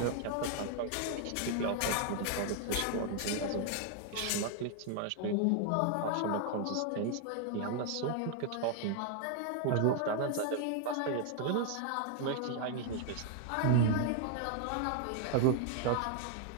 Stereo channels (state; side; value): different; both; correlation 0.00